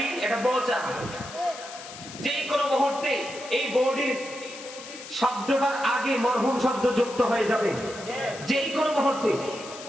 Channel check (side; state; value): left; noise; hiss, 14 dB below the sound